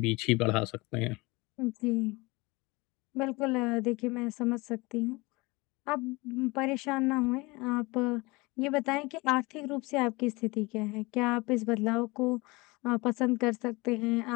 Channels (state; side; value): quieter; right; 24.1 dB